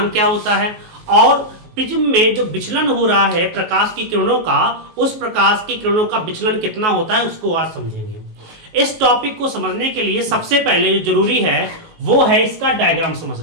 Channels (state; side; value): late; left; 19 ms